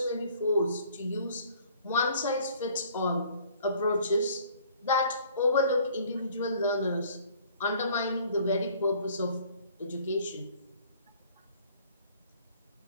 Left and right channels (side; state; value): both; inverted; correlation -0.56